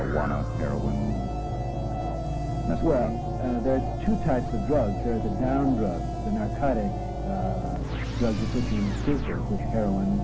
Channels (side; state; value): both; identical; correlation 1.00